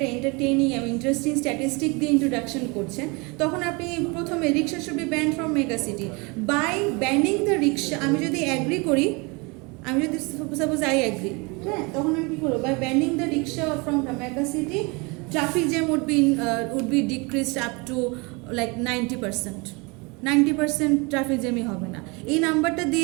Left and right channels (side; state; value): left; quieter; 28.3 dB